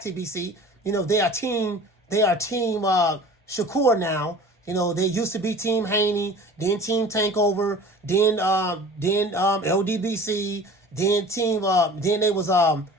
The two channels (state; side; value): normal; both; correlation 0.43